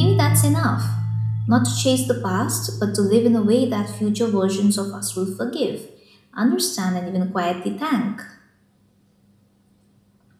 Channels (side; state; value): both; identical; correlation 1.00